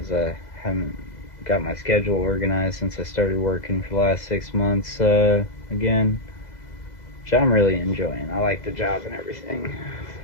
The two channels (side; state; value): right; late; 2.0 ms